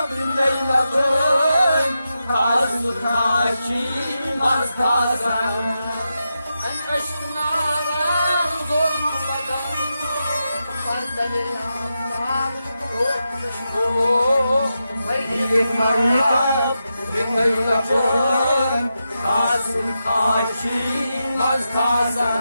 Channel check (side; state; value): both; inverted; correlation -0.88